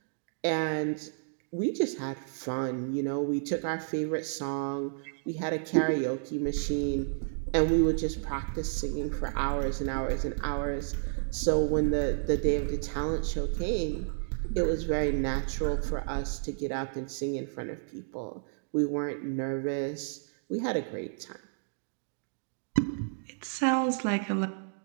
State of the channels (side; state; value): left; silent; digital silence